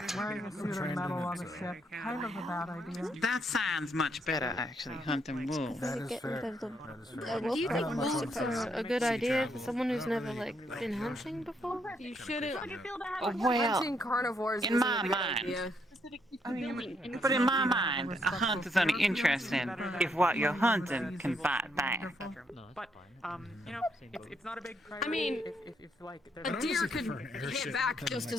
Wearing a suit of metal on a ship, kind of a bad idea. That sounds much better, actually, hunting wolves. That is Get fair. rid of the- That is a fair. wolf Do you pack think on wolves supposed are a good idea for someone who's never like been hunting before? You shouldn't. Well, Hunting carnivores in isn't my a good mind, idea. but in my mind, a hunt is only interesting if what you're hunting can bite back. But it's not a big priority. I mean, if like A there's deer honestly could prefer an airship hit back than just like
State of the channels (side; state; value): both; normal; correlation 0.75